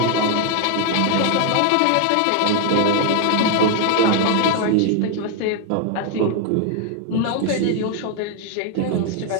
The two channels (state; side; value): different; both; correlation 0.00